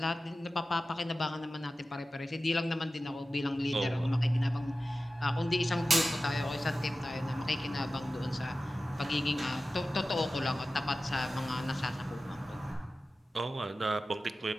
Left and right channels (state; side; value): normal; both; correlation 0.95